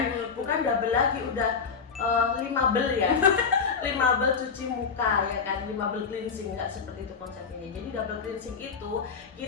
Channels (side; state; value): right; quieter; 5.7 dB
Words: Bukan double lagi, udah 5 bel ya. 5 bel cuci muka ya kan, 5 bel cleansing, nggak seperti itu konsepnya. Jadi double cleansing itu